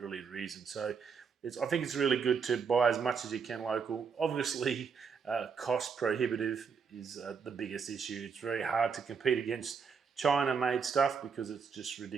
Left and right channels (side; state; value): left; quieter; 5.9 dB